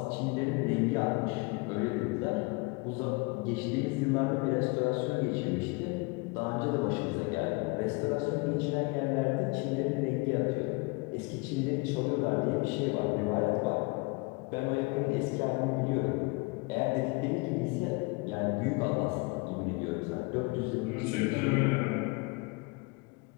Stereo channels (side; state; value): right; quieter; 27.7 dB